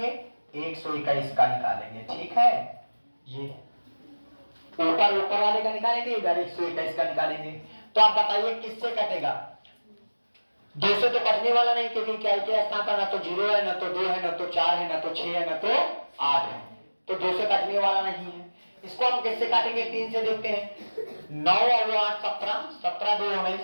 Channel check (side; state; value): both; inverted; correlation -1.00